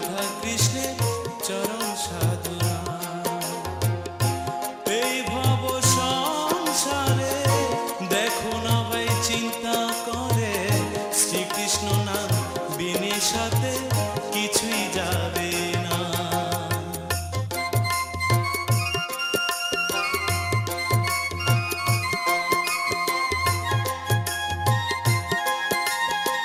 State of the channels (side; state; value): both; identical; correlation 1.00